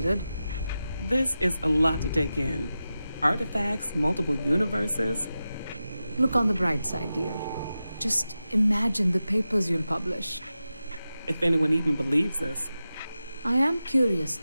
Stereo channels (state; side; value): inverted; both; correlation -0.92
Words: This is a lot to take in. Artifacts, multiple universes. Look on the bright side, dear. Just imagine the papers you'll publish. If anyone even believes this. I am curious,